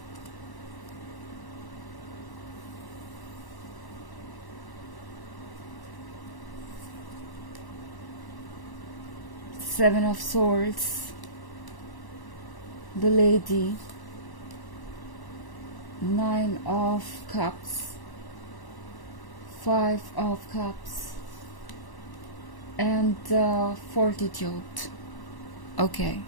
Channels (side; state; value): right; late; 1.1 ms